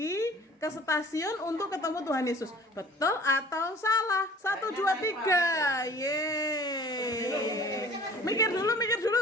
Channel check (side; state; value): both; normal; correlation 0.48